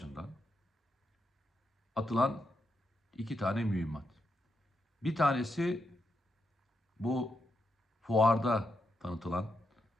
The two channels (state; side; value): normal; both; correlation 0.83